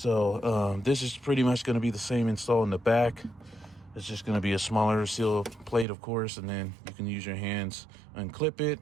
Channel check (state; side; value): drops out; left; at 5.9 s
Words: this is pretty much gonna be the same install in the back. It's just gonna be a smaller seal plate, of course, and then you can use your hands, unclip it.